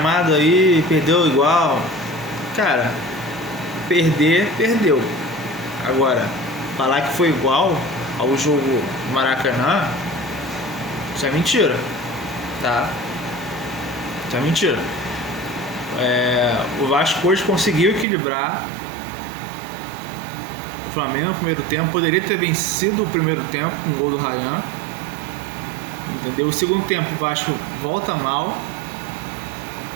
aí, perdeu igual. Cara, perdeu. Agora, falar que foi igual ao jogo do Maracanã, isso é mentira, tá? Isso é mentira. O Vasco hoje conseguiu equilibrar o Flamengo no primeiro tempo. Poderia ter vencido o primeiro tempo com o gol do Ryan, entendeu? O segundo tempo o Vasco volta mal.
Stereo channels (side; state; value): left; drops out; at 18.1 s